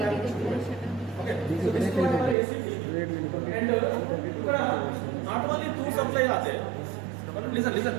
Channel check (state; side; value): drops out; left; at 2.4 s